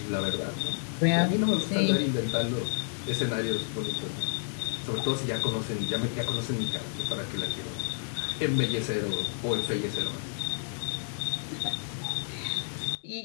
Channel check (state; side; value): silent; right; digital silence